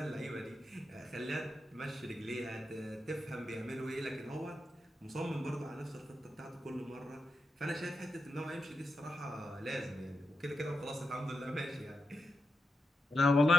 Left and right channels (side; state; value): both; normal; correlation 0.87